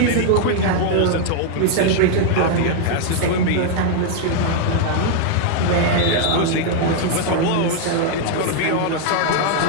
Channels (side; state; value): both; different; correlation 0.00